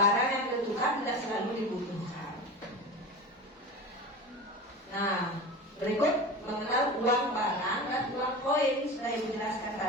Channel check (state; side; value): normal; both; correlation 0.30